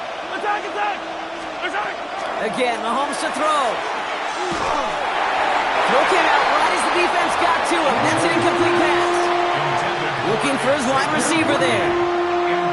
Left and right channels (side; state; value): both; identical; correlation 1.00